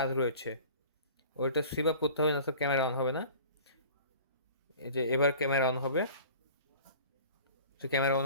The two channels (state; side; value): inverted; both; correlation -0.43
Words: রয়েছে, ওইটা সুইপ আপ করতে হবে না তো ক্যামেরা অন হবে না। এই যে এবার ক্যামেরা অন হবে, যে ক্যামেরা